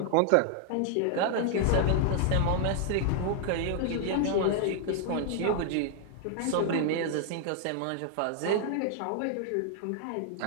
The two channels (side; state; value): both; different; correlation 0.00